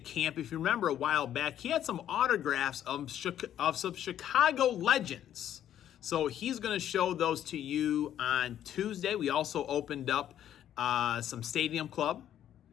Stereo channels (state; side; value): quieter; right; 10.8 dB